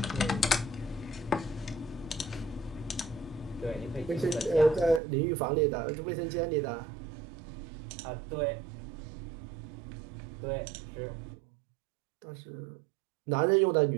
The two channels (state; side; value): drops out; left; at 5.0 s